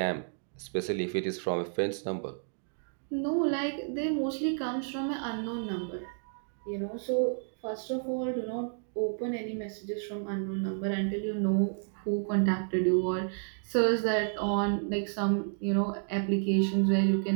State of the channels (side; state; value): left; silent; digital silence